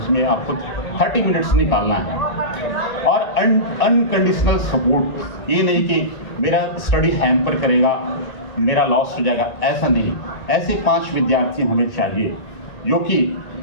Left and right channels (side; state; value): right; late; 1.8 ms